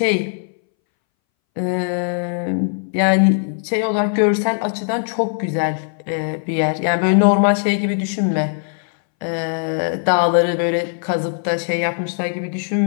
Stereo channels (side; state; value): right; silent; 63 dB below the other